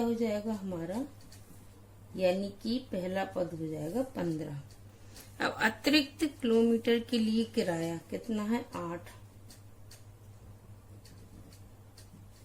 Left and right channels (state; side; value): identical; both; correlation 1.00